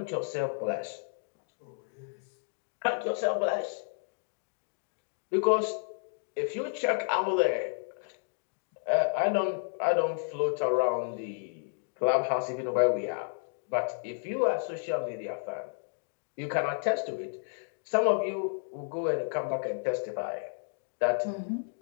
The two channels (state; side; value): silent; right; digital silence